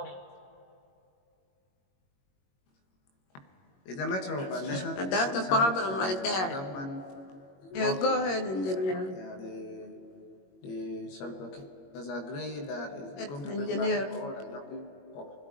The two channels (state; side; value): late; right; 21 ms